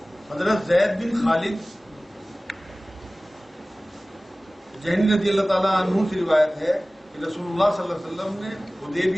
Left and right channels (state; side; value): normal; both; correlation 0.98